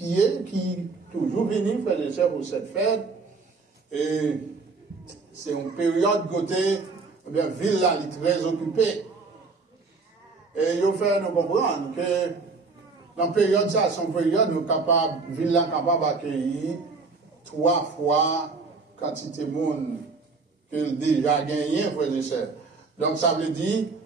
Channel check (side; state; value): left; quieter; 4.2 dB